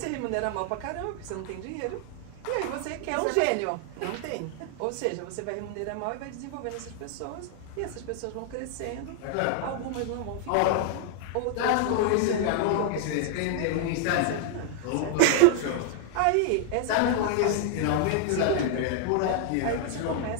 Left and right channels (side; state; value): both; different; correlation 0.00